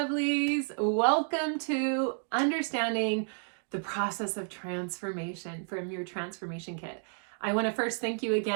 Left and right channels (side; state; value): left; silent; 57 dB below the other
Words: Welcome to Understanding the Process of Transformation from your Transformation Kit. I want to first thank you